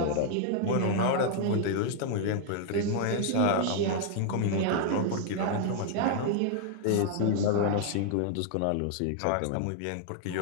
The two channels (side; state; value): both; different; correlation 0.00